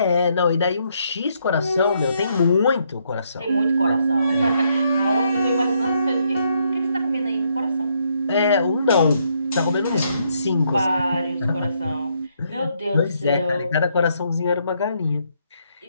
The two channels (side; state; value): both; inverted; correlation -0.74